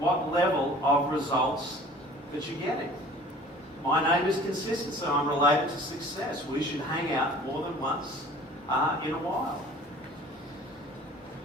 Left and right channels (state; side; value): normal; both; correlation 0.47